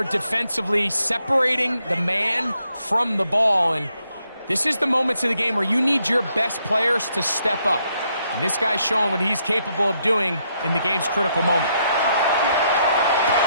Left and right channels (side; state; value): both; inverted; correlation -0.76